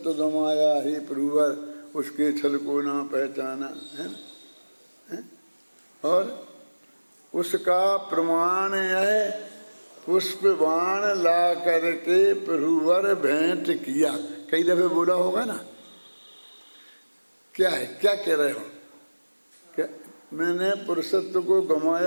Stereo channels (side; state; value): both; inverted; correlation -1.00